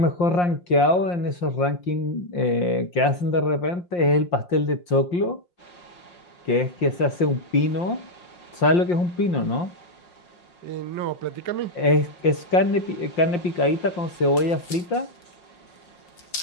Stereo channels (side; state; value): right; late; 5.7 ms